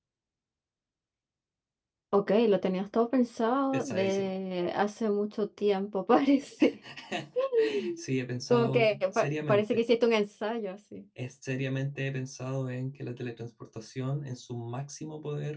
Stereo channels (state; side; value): identical; both; correlation 1.00